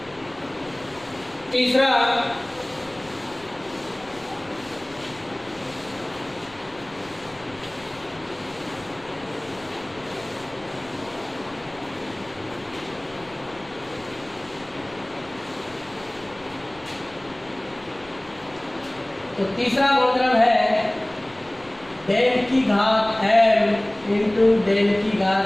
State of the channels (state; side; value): noise; left; rumble, 25 dB below the sound